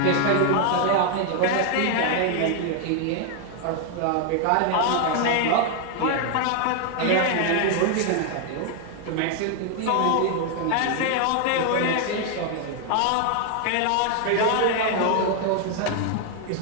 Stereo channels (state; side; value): different; both; correlation 0.00